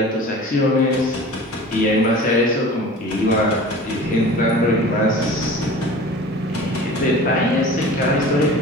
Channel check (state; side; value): normal; both; correlation 0.40